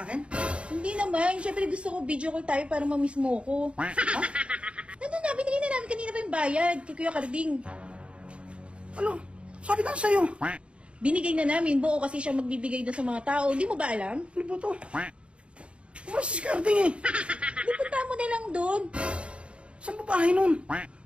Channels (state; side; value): late; left; 0.059 ms